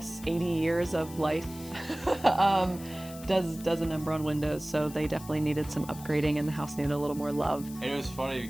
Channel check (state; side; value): noise; left; hiss, 17 dB below the sound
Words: 80 years of life does a number on windows, so they definitely needed some upgrading and the house needed a little more love. And it was funny